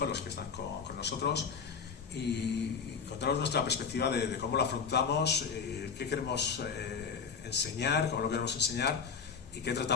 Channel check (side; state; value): right; quieter; 6.0 dB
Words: los que están con nosotros, y contaros nuestra perspectiva de cómo lo afrontamos, qué queremos enseñar, cómo lo queremos enseñar y qué